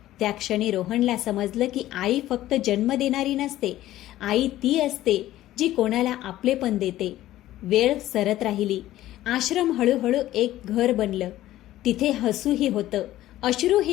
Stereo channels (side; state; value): right; quieter; 14.5 dB